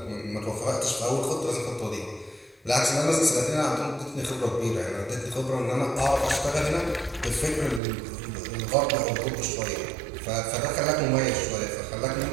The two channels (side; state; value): left; drops out; at 7.8 s